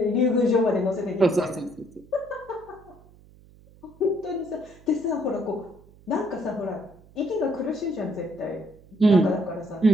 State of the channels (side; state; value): right; noise; hum, 25 dB below the sound